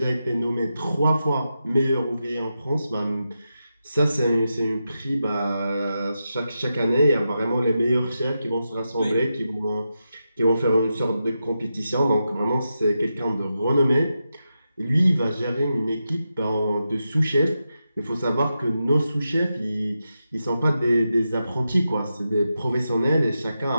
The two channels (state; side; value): inverted; both; correlation -0.88